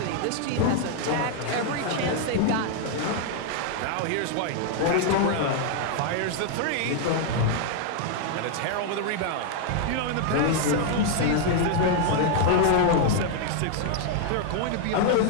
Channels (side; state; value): both; different; correlation 0.00